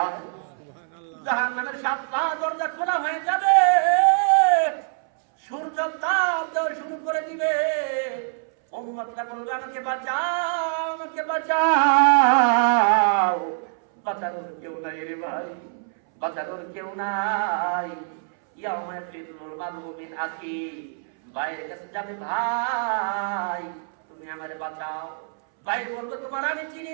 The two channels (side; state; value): left; silent; 62 dB below the other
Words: জাহান্নামের 7টা দরজা খোলা হয়ে যাবে, সূর্য তাপ দেওয়া শুরু করে দিবে। উম্মতরা বলবে আমাকে বাঁচাও, আমাকে বাঁচাও। বাঁচানোর কেউ নাই রে ভাই, বাঁচানোর কেউ নাই। ইয়াউমা ফিরুল মারউ মিন আখি, ভাইয়ের কাছে যাবে, ভাই তুমি আমারে বাঁচাও। ভাই বলবো তোমার আমি চিনি